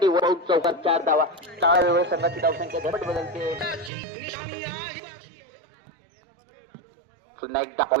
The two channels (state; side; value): drops out; left; at 3.9 s